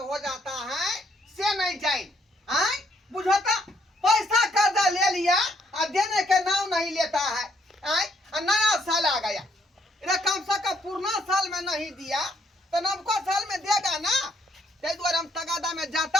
हो जाता है से नहीं जाए बुझता। पैसा कर्जा ले लिया और देने के नाम नहीं लेता है। नया साल आ गया, कम से कम पुराना साल में नहीं दिया तो नवका साल में देगा ना। ते द्वारा हम तगादा में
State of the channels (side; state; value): both; normal; correlation 0.69